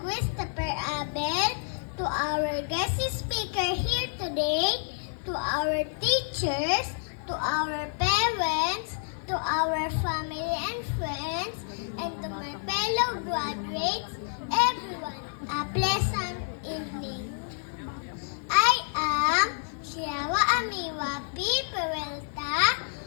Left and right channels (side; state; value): right; silent; 59 dB below the other